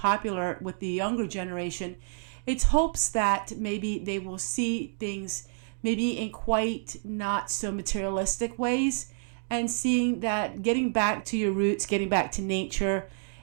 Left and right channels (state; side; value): silent; left; digital silence